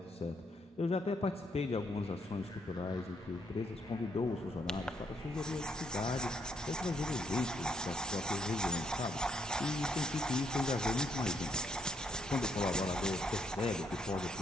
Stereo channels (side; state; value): both; normal; correlation 0.73